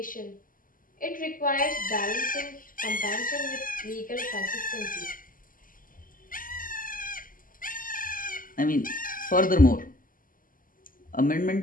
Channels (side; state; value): right; late; 0.40 ms